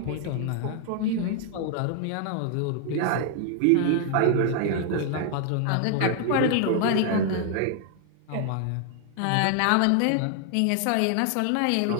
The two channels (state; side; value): different; both; correlation 0.00